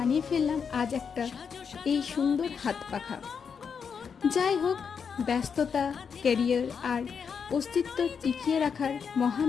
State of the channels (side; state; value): right; quieter; 6.4 dB